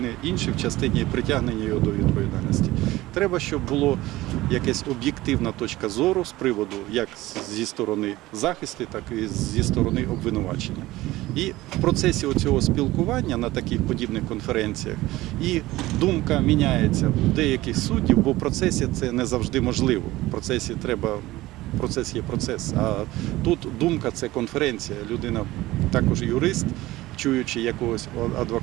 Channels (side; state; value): left; quieter; 17.8 dB